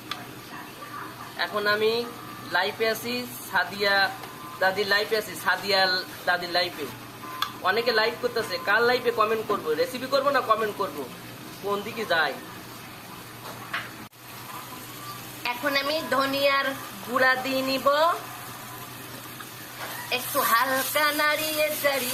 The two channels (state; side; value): identical; both; correlation 1.00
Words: এখন আমি লাইফে আছি, সাদিয়া দাদির লাইফে আছি, সাদিয়া দাদির লাইফে। অনেকে লাইভ করতেছে, কার লাইফে কমেন্ট করবো, রেসিপি করবো না কমেন্ট করবো, কোন দিকে যায়। এখন আমি ধনিয়ার গুঁড়া দিয়ে নিব, একটু হালকা নাড়িয়ে